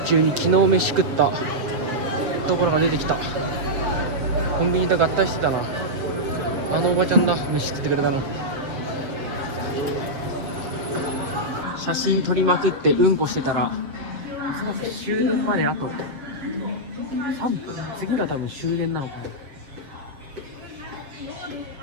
中に昨日飯食ったところが出てきた。コンビニと合体してたな。あのおばちゃんだ、飯食ってくれたの。写真撮りまくってうんこしてたら、おそらく終電まであと3分。次が多分終電なのかな。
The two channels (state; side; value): late; left; 7.7 ms